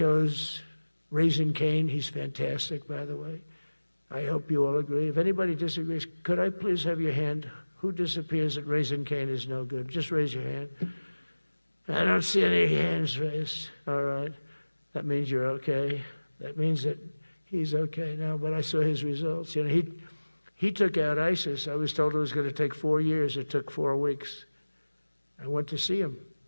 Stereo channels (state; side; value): inverted; both; correlation -1.00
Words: Raising Cane. He's fantastic, by the way. I hope you all agree. If anybody disagrees, could I please have your hand? Who disappears that Raising Cane is no good? Just raise your hand. I don't see any hands raised. All right. That means you're okay. That means that he's okay now, but I saw his results. You know, he took out ISIS. I was told it was going to take 4 years. It took 4 weeks. I went to see him,